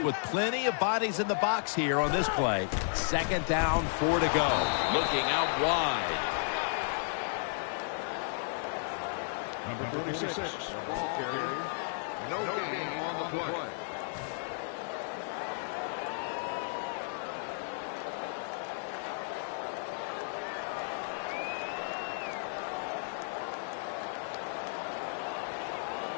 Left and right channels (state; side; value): silent; right; 55 dB below the other